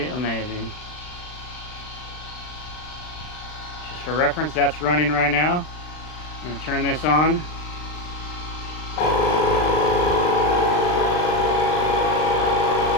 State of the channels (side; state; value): right; late; 39 ms